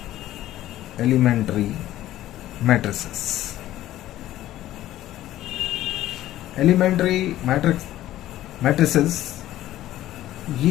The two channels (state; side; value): quieter; right; 14.0 dB